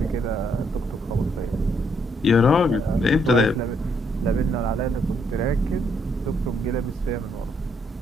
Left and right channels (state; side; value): normal; both; correlation 0.73